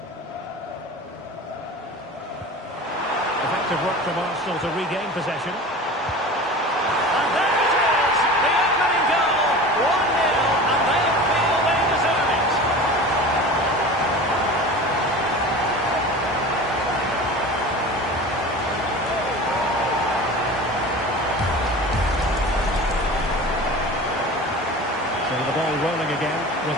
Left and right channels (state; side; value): normal; both; correlation 0.36